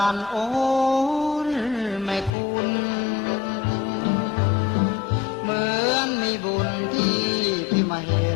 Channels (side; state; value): right; drops out; at 2.3 s